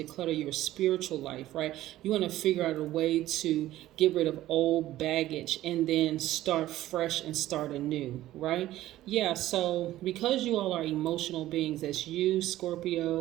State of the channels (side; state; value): left; quieter; 14.7 dB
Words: declutter your spiritual life, right? You want to figure out a way to get rid of old baggage and then start fresh and start anew, right? Yeah, so because you all are emotional beings, that's you,